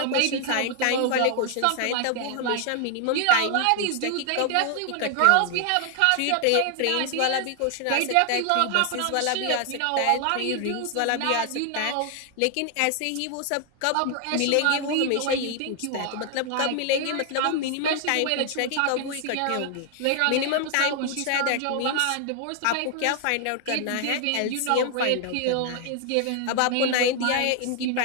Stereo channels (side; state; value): both; different; correlation 0.00